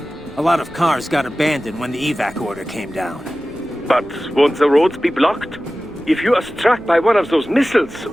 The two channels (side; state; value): left; noise; rumble, 22 dB below the sound